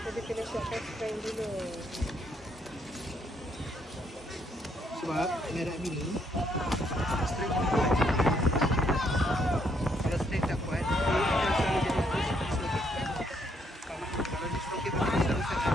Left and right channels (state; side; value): normal; both; correlation 0.72